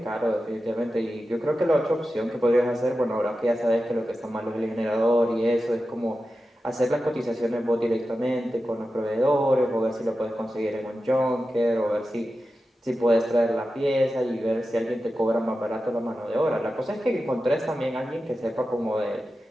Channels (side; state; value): both; normal; correlation 0.92